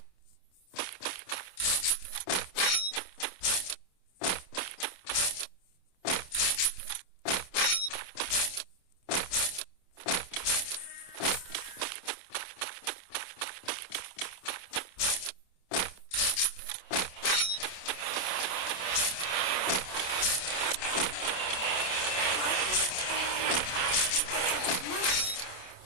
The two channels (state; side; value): late; right; 27 ms